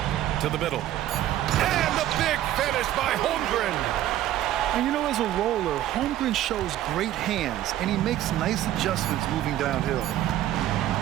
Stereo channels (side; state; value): left; quieter; 13.0 dB